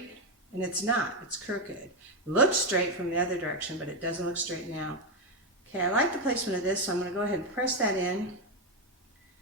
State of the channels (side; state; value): both; normal; correlation 0.06